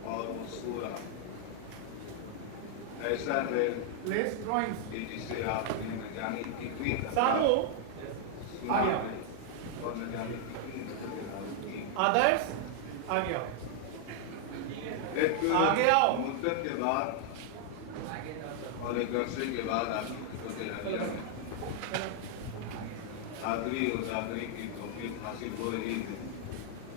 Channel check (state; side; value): different; both; correlation 0.00